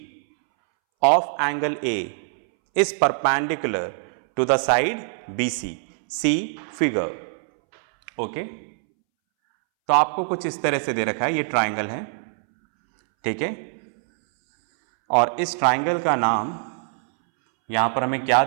of angle A is perpendicular to the side BC, see figure. Okay, तो आपको कुछ इस तरह से दे रखा है, ये ट्राइंगल है, ठीक है। और इस ट्राइंगल का नाम यहां पर हमें क्या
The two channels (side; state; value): left; silent; 63 dB below the other